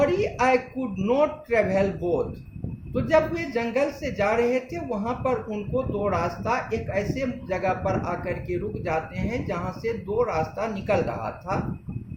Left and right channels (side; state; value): both; identical; correlation 1.00